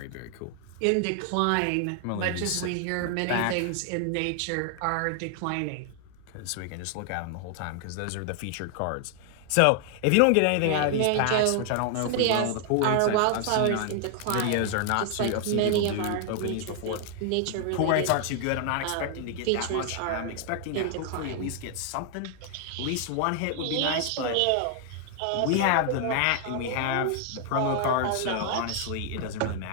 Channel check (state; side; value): different; both; correlation 0.00